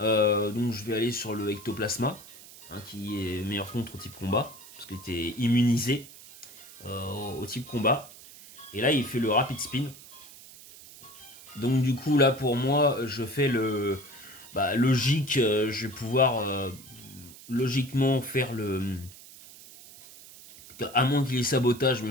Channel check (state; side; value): noise; right; hiss, 19 dB below the sound